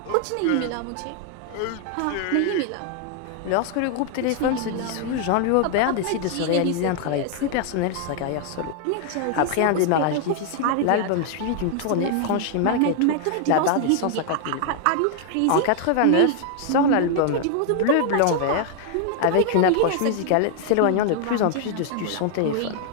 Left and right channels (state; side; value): different; both; correlation 0.00